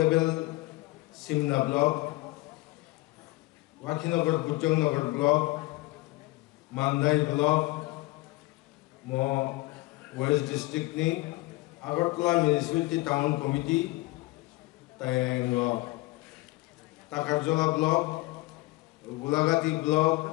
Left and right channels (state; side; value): quieter; right; 20.7 dB